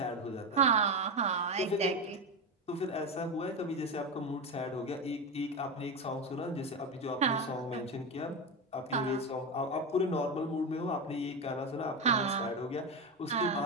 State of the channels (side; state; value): both; normal; correlation 0.15